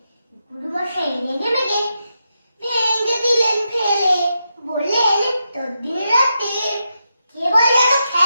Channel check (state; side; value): inverted; both; correlation -0.85